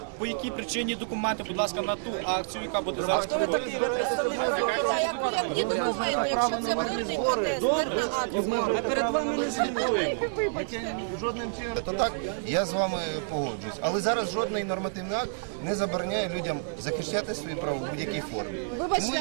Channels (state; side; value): silent; left; digital silence